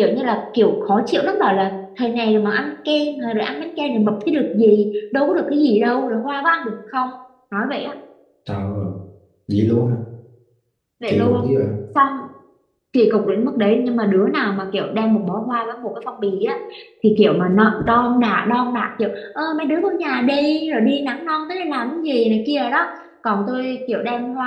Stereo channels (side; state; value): both; identical; correlation 1.00